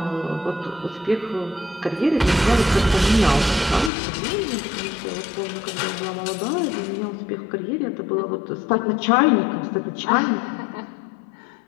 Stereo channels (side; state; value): right; drops out; at 3.9 s